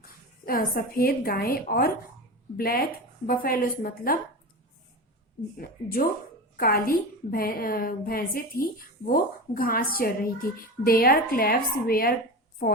सफेद गायें और ब्लैक बफेलोज मतलब जो काली भैंसें थी वो घास चर रही थी। देयर क्लैव्स वेयर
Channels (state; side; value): normal; both; correlation 0.26